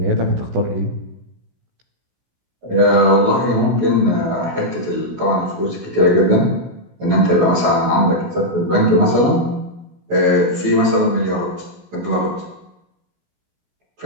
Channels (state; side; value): late; left; 16 ms